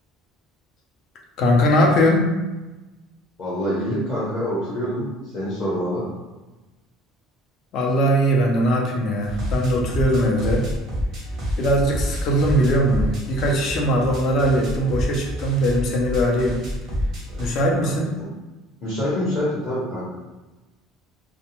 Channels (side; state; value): both; normal; correlation 0.53